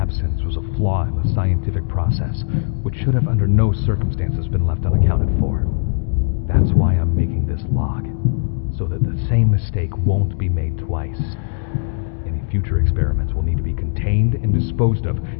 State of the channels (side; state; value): right; silent; digital silence